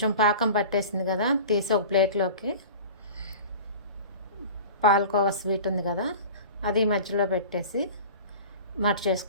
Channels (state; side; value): inverted; both; correlation -0.38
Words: పాకం పట్టేసింది కదా, తీసి ఒక ప్లేట్లోకి పాలకోవా స్వీట్ ఉంది కదా, అది మధ్యలో పెట్టేసి